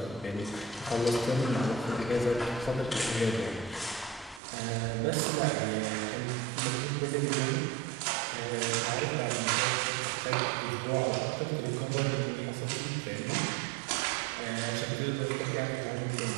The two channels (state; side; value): drops out; left; at 4.4 s